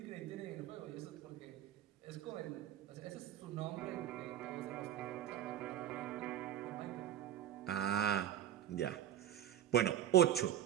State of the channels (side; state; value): left; quieter; 11.0 dB